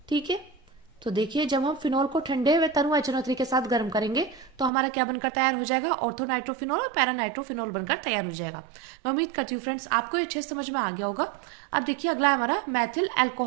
ठीक है, तो देखिए जब हम फिनॉल को ठंडे व तनु HNO3 के साथ गर्म करेंगे तो हमारा क्या बनकर तैयार हो जाएगा? ऑर्थो नाइट्रोफिनोल और पैरा नाइट्रोफिनोल बनकर तैयार हो जाएगा। मैं उम्मीद करती हूँ फ्रेंड्स आपको ये अच्छे समझ में आ गया होगा। अब देखिए अगला हमारा मैथिल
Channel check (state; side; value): drops out; left; at 4.7 s